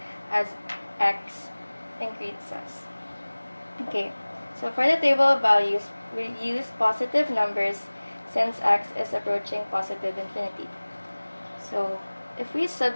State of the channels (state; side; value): inverted; both; correlation -1.00